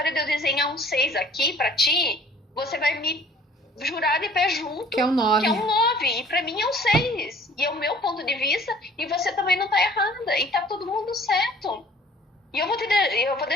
de eu desenhar um 6 aqui pra ti, você vai me jurar de pé junto. Que é um 9. Que é um 9. E pra mim é um 6. E é o meu ponto de vista, e você também não tá errada. E tá todo mundo certo. E eu vou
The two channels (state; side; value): normal; both; correlation 0.53